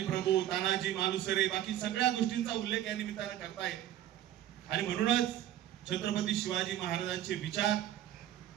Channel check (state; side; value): quieter; left; 12.3 dB